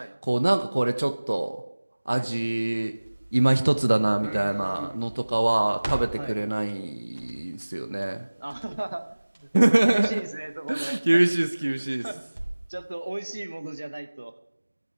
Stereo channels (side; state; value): both; inverted; correlation -1.00